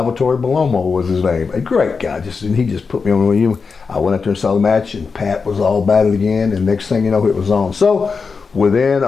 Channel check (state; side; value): quieter; right; 5.0 dB